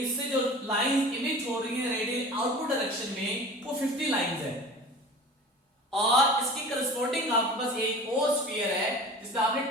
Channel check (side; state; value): both; normal; correlation 0.39